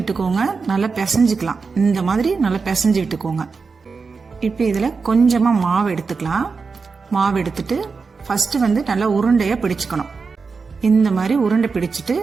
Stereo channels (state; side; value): quieter; left; 4.8 dB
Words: நல்லா பிசைஞ்சுக்கலாம். இந்த மாதிரி நல்லா பிசைஞ்சு விட்டுக்கோங்க. இப்ப இதுல கொஞ்சமா மாவு எடுத்துக்கலாம். மாவு எடுத்துட்டு ஃபர்ஸ்ட் நல்லா உருண்டையா பிடிச்சுக்கணும். இந்த மாதிரி உருண்டை பிடிச்சிட்டு